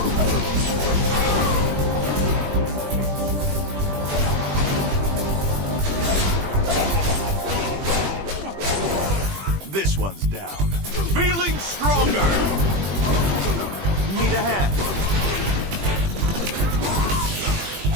This one's down. Feeling stronger! Need a hand?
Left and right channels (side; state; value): left; late; 20 ms